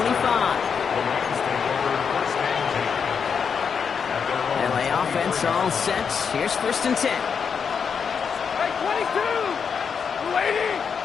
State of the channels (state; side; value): quieter; right; 6.5 dB